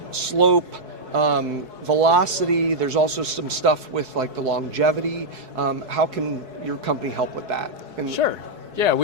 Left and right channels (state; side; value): late; left; 4.7 ms